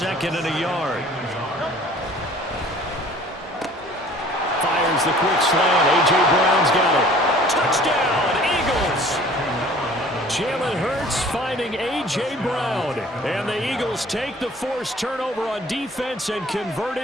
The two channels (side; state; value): both; normal; correlation 0.51